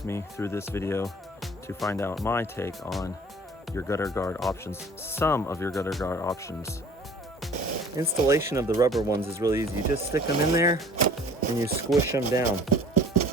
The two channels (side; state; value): both; normal; correlation 0.49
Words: me through this video to find out my take on your gutter guard options, some of your gutter guard options. Installation of the rubber ones is really easy. You just stick them in there and you squish them down.